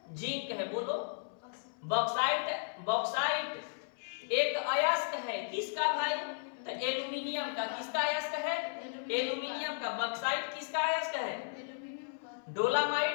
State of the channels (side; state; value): right; silent; 55 dB below the other